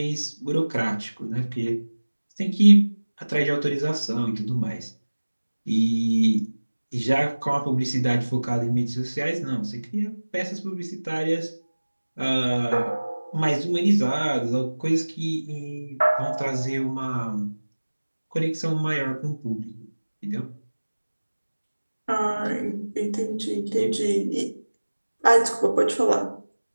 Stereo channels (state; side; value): inverted; both; correlation -1.00